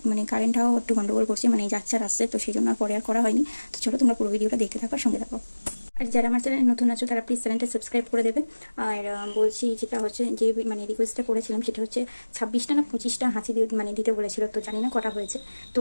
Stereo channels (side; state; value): both; inverted; correlation -1.00